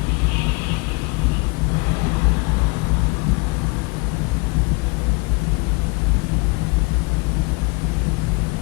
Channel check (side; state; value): right; quieter; 27.8 dB